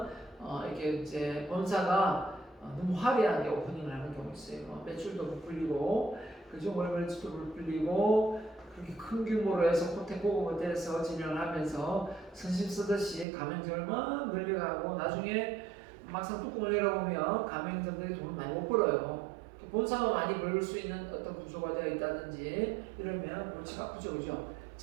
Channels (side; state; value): left; drops out; at 13.2 s